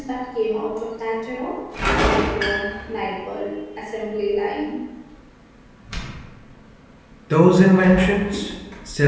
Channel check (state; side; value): identical; both; correlation 1.00